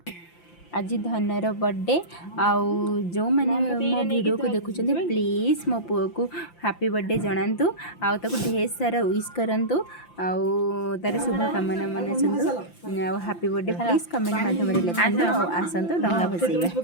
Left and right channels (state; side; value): late; right; 5.8 ms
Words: आज धनर बर्थडे आउ जो मैंने मो वीडियो को देखुं प्लीज मो पुओ को हैप्पी बर्थडे जनातु आउ ढेर सारा विश करंतु आउ तार शुभकामना मनासतु हैप्पी बर्थडे प्लीज कमेंट माध्यम लिखंतु और आसंतु डंगा भसैबा।